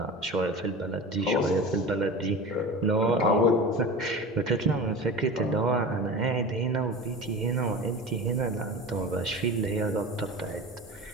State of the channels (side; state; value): both; normal; correlation 0.32